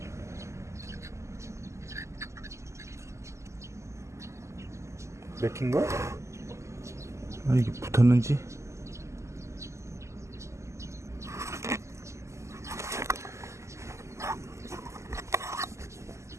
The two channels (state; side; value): late; left; 0.14 ms